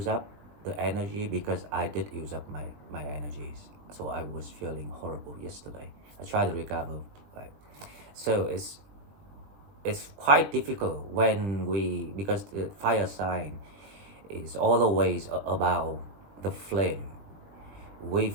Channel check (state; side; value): late; left; 20 ms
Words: up the energy, because I did use up my energies. So I was feeling horrible yesterday. I tried to recover, right? So it's quite difficult when because the fire sign is always about the flame. We